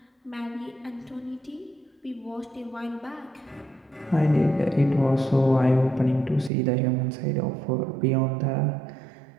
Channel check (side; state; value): left; drops out; at 6.5 s